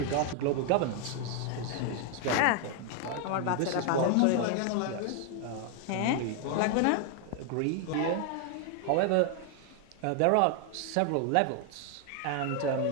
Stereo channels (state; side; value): different; both; correlation 0.00